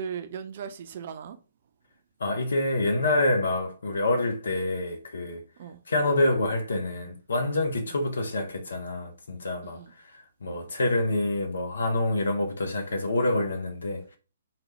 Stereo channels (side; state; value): both; inverted; correlation -0.75